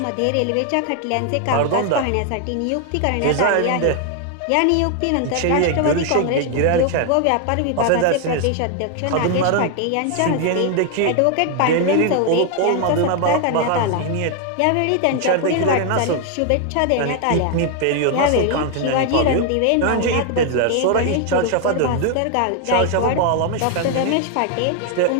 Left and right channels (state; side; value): different; both; correlation 0.00